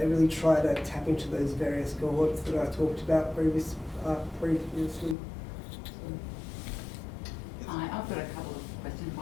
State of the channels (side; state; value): right; drops out; at 5.2 s